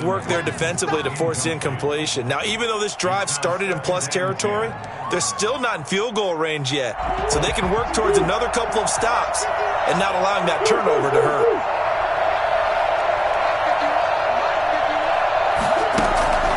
work there defensively to force incompletion. Now, even though this drive started in plus territory, they're still not in field goal range yet. So they can work towards another couple of stops and not allowing that turnover to hurt.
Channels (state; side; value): identical; both; correlation 1.00